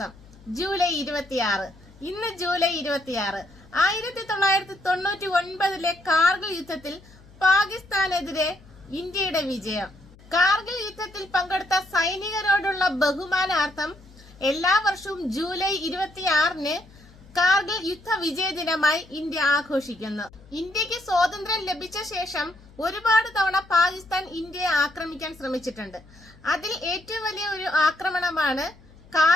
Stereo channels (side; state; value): left; noise; hum, 24 dB below the sound